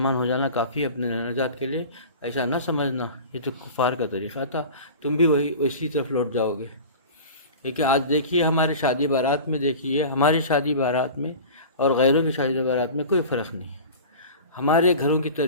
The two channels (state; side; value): inverted; both; correlation -0.36